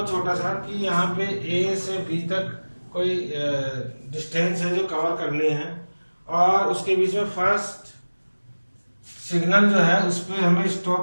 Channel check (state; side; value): inverted; both; correlation -1.00